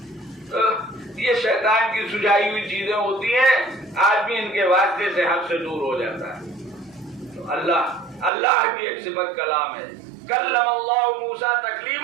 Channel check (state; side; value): drops out; left; at 8.3 s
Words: تو یہ شیطان کی سجائی ہوئی چیزیں ہوتی ہیں. آدمی ان کے واسطے سے حق سے دور ہو جاتا ہے. تو اللہ کی ایک صفت کلام ہے. کلم اللہ موسیٰ